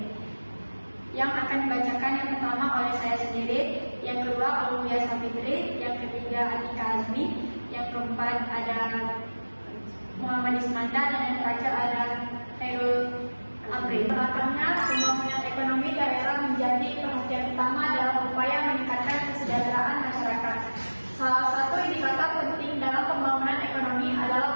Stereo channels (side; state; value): both; inverted; correlation -1.00